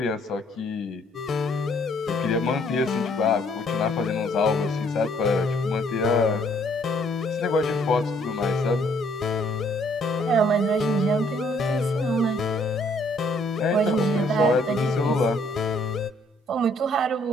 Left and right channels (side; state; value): both; normal; correlation 0.64